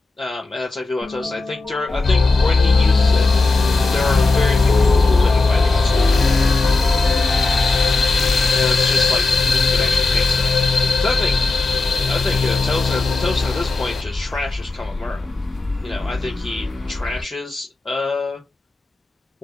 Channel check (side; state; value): right; quieter; 3.4 dB